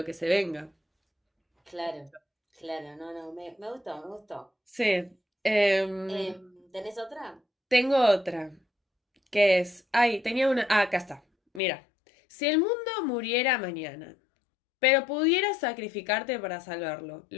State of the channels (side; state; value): right; drops out; at 11.6 s